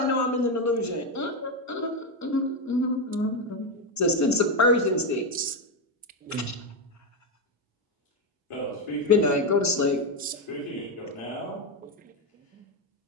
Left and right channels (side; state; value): both; normal; correlation 0.08